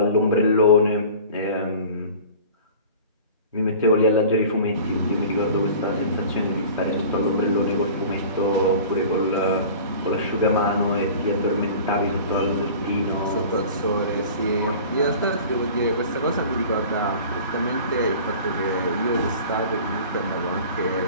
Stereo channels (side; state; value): both; inverted; correlation -0.41